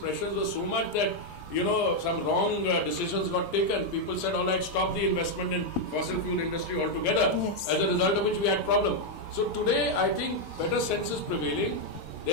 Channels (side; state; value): right; late; 5.8 ms